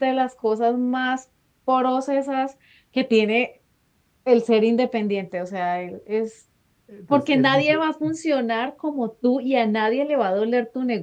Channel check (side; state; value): both; identical; correlation 1.00